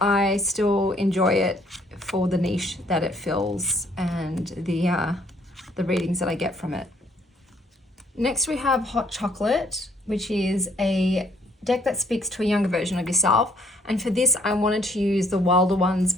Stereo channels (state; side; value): normal; both; correlation 0.65